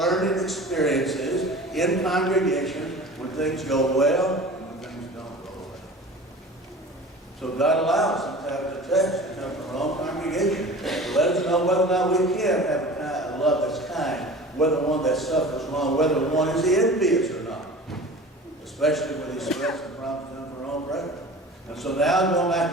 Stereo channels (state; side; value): normal; both; correlation 0.39